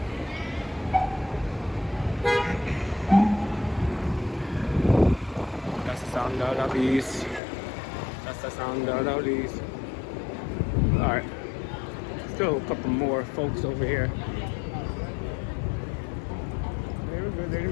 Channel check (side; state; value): right; drops out; at 7.4 s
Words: That's the sound of these. That's the sound of these. Alright. Still a couple more folks over here. They were good, they